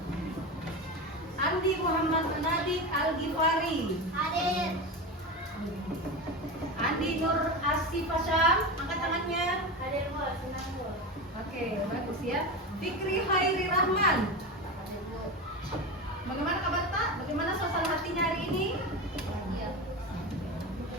Andi Muhammad Nadik Al-Ghifari. Hadir. Andi Nur Asifasham, angkat tangannya. Hadir, Bu. Senang, Bu. Oke, bagus ya. Fikri Hairi Rahman. Hadir, Bu. Bagaimana kabar Tak? Bagaimana suasana hatinya hari ini? Bahagia.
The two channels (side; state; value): both; normal; correlation 0.22